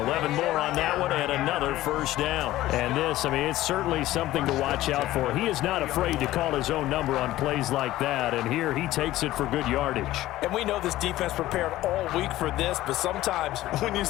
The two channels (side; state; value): right; quieter; 15.6 dB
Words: 11 more on that one, and another first down. And this, I mean, it's certainly something to watch out for. He is not afraid to call his own number on plays like that, and here he takes it for good yardage. And we know this defense prepared all week for this, but sometimes when you